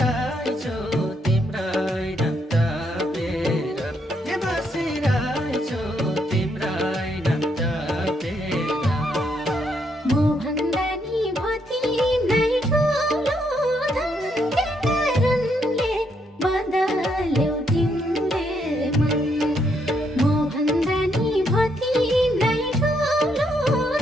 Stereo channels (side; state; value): both; normal; correlation 0.75